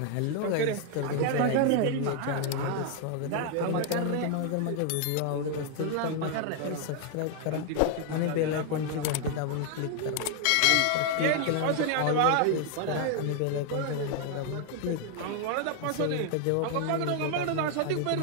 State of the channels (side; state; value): both; different; correlation 0.00